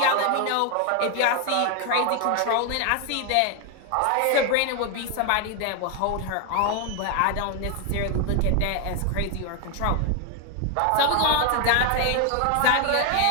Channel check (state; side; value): different; both; correlation 0.01